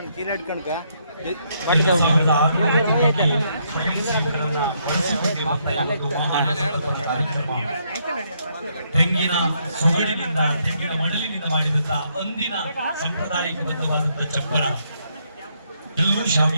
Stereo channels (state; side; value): inverted; both; correlation -0.74